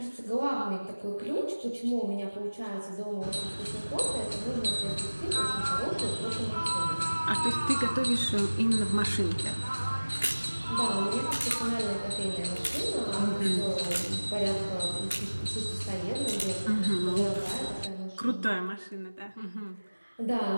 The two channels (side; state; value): both; inverted; correlation -1.00